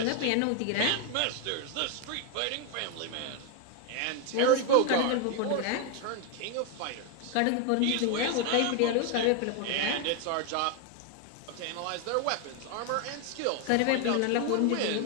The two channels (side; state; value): both; different; correlation 0.01